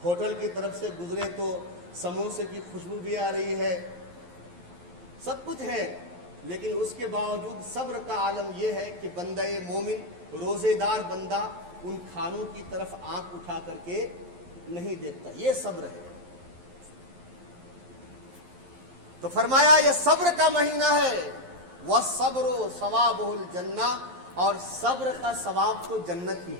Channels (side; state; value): left; late; 11 ms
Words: ہوٹل کی طرف سے گزرے تو سموسے کی خوشبو بھی آ رہی ہے، سب کچھ ہے، لیکن اس کے باوجود صبر کا عالم یہ ہے کہ بندہ مومن، روزے دار بندہ ان کھانوں کی طرف آنکھ اٹھا کر کے نہیں دیکھتا، یہ صبر ہے۔ تو فرمایا یہ صبر کا مہینہ ہے، وَالصَّبْرُ ثَوَابُهُ الْجَنَّةُ، اور صبر کا ثواب تو جنت ہی